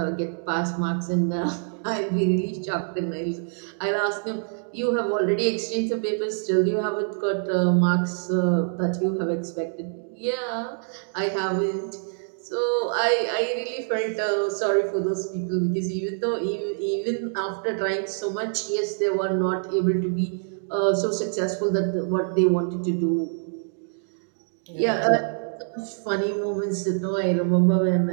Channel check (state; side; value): silent; left; 61 dB below the other